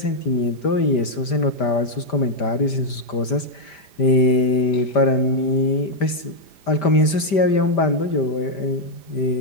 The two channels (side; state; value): right; late; 5.1 ms